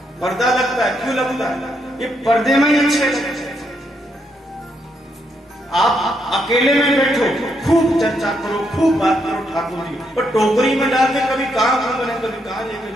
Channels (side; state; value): both; normal; correlation 0.77